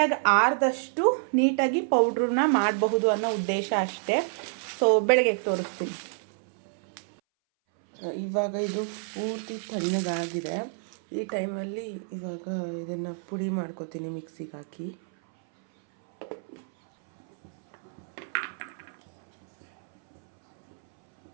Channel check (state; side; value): silent; left; 59 dB below the other